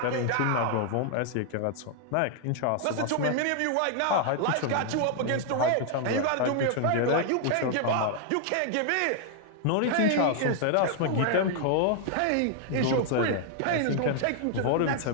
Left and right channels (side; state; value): both; different; correlation 0.00